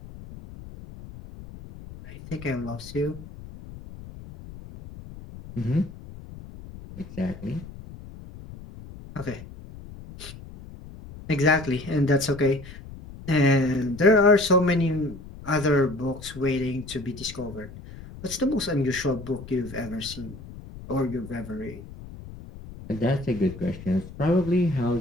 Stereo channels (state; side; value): noise; left; rumble, 15 dB below the sound